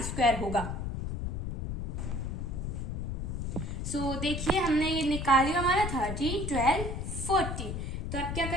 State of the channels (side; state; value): left; noise; rumble, 3 dB below the sound